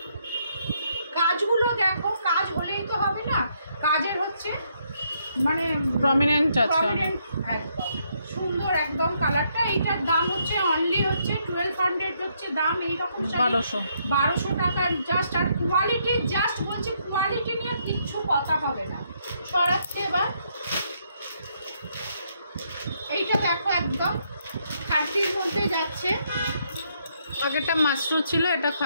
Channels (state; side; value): inverted; both; correlation -0.73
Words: কাজগুলো দেখো, কাজ হলেই তো হবে না, কাজের হচ্ছে মানে প্রমিনেন্ট আছে, প্রমিনেন্ট একদম সুন্দর একদম কালারটা। এইটার দাম হচ্ছে অনলি হচ্ছে 1200 হচ্ছে দাম। এইরকম 1200 টাকার জাস্ট। আর কোয়ালিটি জাস্ট বলছি, কোয়ালিটি নিয়ে কিচ্ছু কথা হবে না। সরাচ্ছে এবার। এইটা দেখো একদম খাদ্যের মধ্যে যাচ্ছে। আগেরটা মাশরুম ছিল, এটা